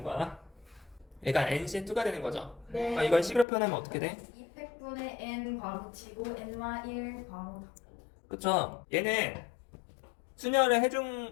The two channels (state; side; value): drops out; right; at 3.5 s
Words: 거야. 그러니까 NC2가 되는 거죠. 네. 이걸 C로 표현하면 어떻게 돼? 200분의 n 괄호 치고 n-1 괄호 닫고. 그쵸? 얘는 순열을